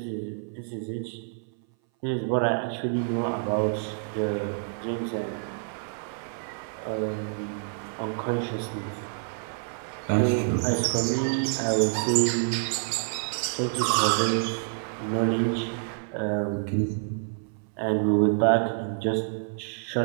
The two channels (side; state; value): left; silent; 58 dB below the other